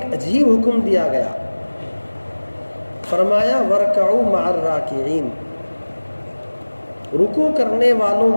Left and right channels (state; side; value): inverted; both; correlation -1.00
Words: عجیب حکم دیا گیا، فرمایا وَارْكَعُوا مَعَ الرَّاكِعِينَ، رکوع کرنے والوں